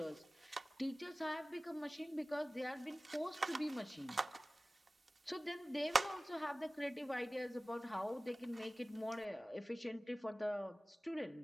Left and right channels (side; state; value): both; normal; correlation 0.98